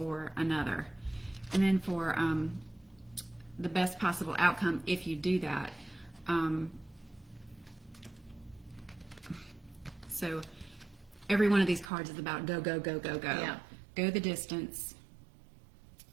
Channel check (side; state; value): left; drops out; at 11.9 s